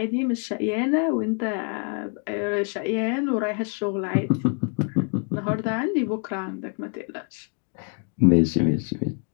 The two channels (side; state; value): right; quieter; 39.7 dB